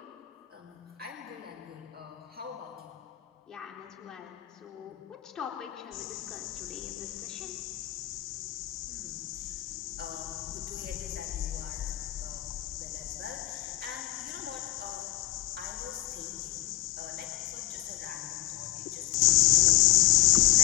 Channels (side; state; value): right; quieter; 15.6 dB